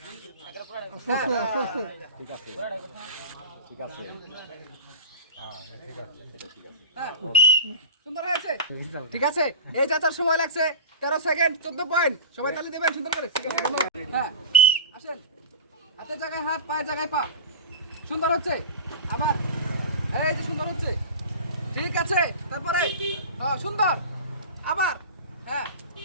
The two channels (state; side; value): inverted; both; correlation -0.31